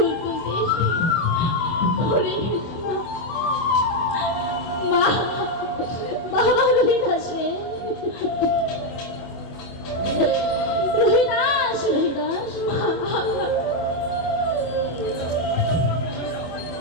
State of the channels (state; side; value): late; right; 24 ms